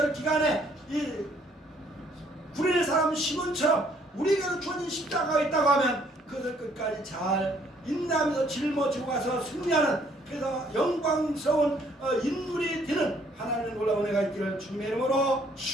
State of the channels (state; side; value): normal; both; correlation 0.64